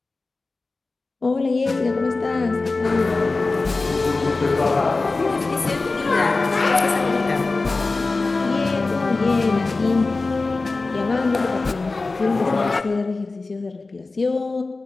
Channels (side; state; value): right; quieter; 3.6 dB